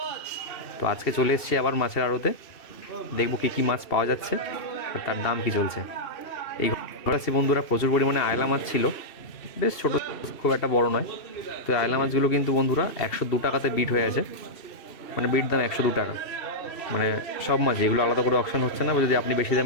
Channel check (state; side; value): late; right; 2.7 ms